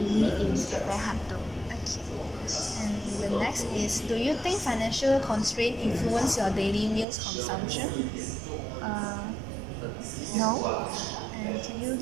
cafe Hantu. Okay. And the next is, do you think financial constraint influence your daily meals consumption? No. And can you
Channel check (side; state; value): left; drops out; at 7.1 s